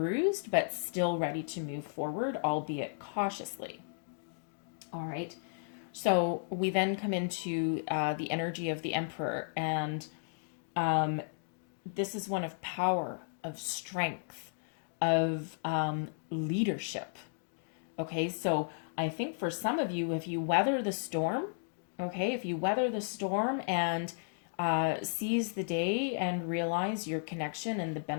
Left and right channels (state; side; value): silent; right; digital silence